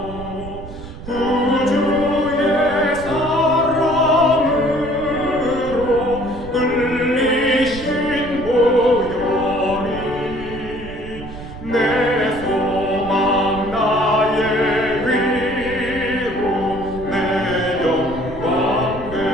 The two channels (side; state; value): right; noise; rumble, 13 dB below the sound